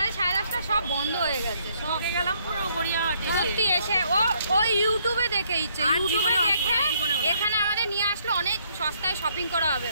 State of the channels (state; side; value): inverted; both; correlation -0.69